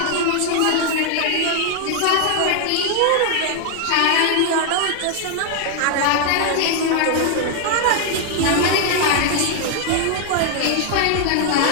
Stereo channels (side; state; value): both; different; correlation 0.00